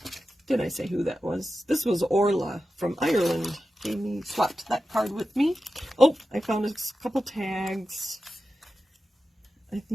Did I say who that was? This was Orla from Ireland. Swapped that card with me. Oh, I found a couple tags. I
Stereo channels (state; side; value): normal; both; correlation 0.92